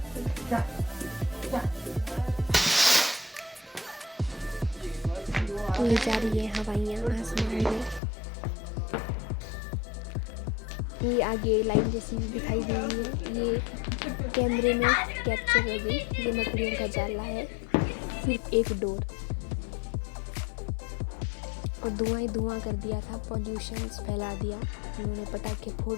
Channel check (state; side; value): drops out; right; at 8.0 s